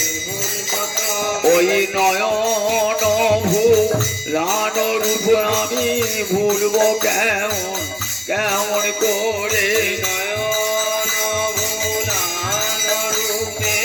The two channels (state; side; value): identical; both; correlation 1.00